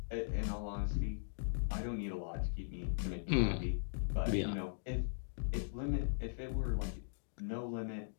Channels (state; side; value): silent; right; digital silence